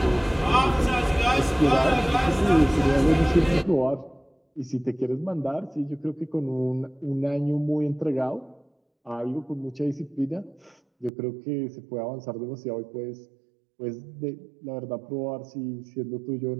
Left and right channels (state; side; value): drops out; left; at 11.1 s